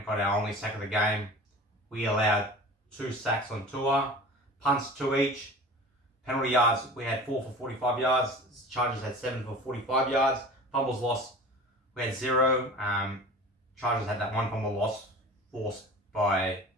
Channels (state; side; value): normal; both; correlation 0.39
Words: got our only sack of the game. We allowed 2 sacks on Tua. Punts 2 each. Penalty yards, we had 4 for 45 yards. Chargers had 7 for 45 yards. Fumbles lost, we had 0. Chargers had that 1 fumble loss forced by